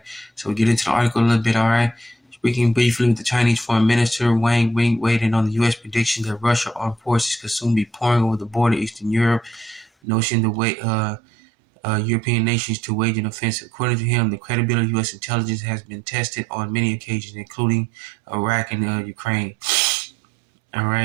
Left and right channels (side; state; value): left; drops out; at 9.9 s